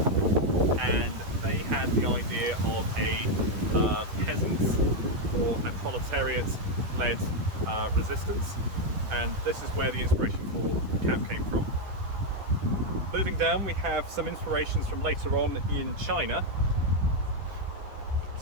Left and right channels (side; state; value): left; late; 10 ms